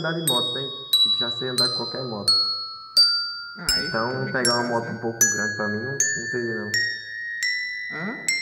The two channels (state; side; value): identical; both; correlation 1.00